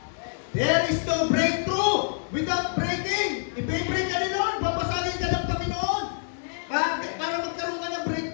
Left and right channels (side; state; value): right; silent; 60 dB below the other